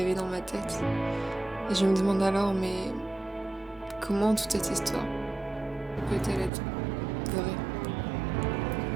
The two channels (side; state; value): left; drops out; at 6.5 s